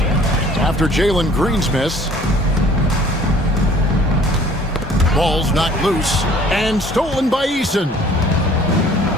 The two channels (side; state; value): both; normal; correlation 0.53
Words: After Jalen Green's miss. Ball's knocked loose and stolen by Eason.